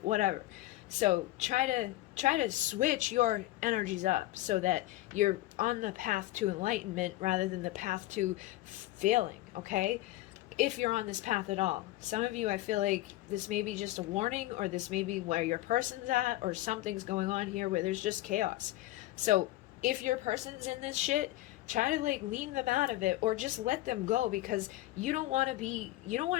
whatever. So try to switch your energies up so that you're on the path to enlightenment rather than the path to failing, okay? If you're on this path at all. Some of you, I feel like this may be just a warning, or this may be where your person's at, or something's going on here where there's just chaos. So if your person's in this shit, try to lean them out of it, or just let them go, because you don't want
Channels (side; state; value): right; quieter; 16.7 dB